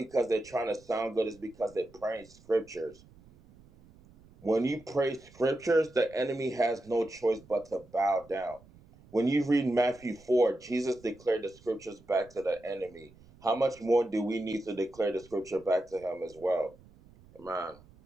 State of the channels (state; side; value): noise; right; rumble, 25 dB below the sound